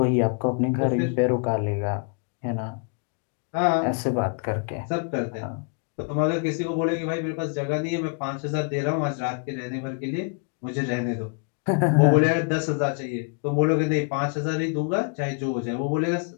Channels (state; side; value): quieter; right; 36.8 dB